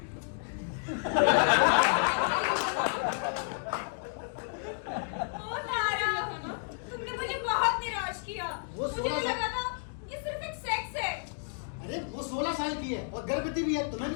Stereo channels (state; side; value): silent; right; digital silence